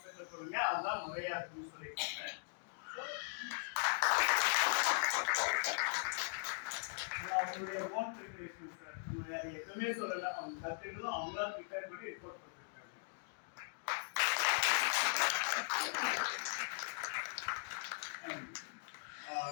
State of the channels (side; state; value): right; silent; digital silence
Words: சொல்லுங்க, அதுதான் முறையா இருக்குன்னு சொல்லியிருக்காங்க. அவங்களுடைய ஓன் ப்ரிப்பரேஷன் சார், நம்ம வேற எதுவுமே சொல்லல. அவங்க கத்துக்கிட்டு அவங்களா ப்ரிப்பேர் பண்ணி ரிப்போர்ட் பண்ணிருக்காங்க.